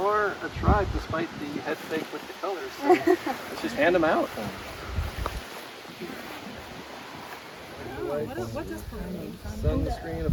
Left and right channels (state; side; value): identical; both; correlation 1.00